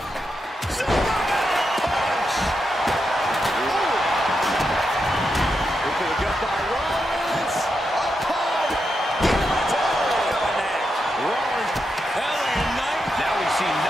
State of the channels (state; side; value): normal; both; correlation 0.85